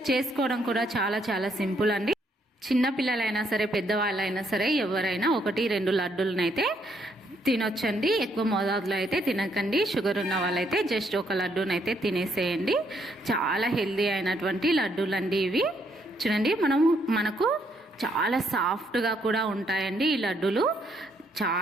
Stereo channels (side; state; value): both; normal; correlation 0.72